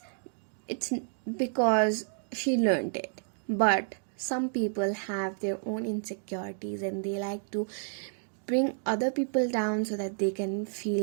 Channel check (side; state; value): left; silent; digital silence